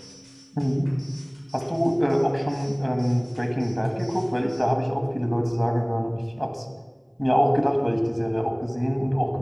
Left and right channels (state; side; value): identical; both; correlation 1.00